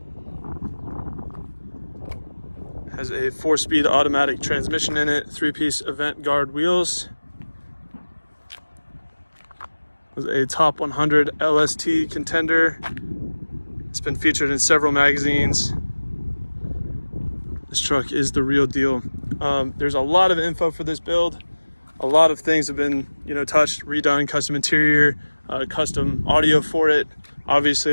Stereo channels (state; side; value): inverted; both; correlation -1.00